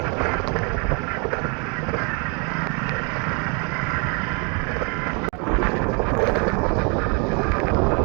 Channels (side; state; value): left; quieter; 34.6 dB